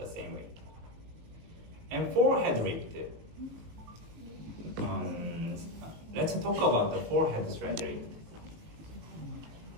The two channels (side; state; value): left; late; 18 ms